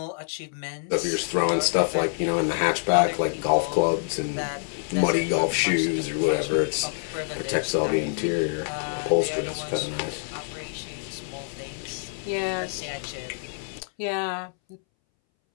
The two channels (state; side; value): silent; right; 61 dB below the other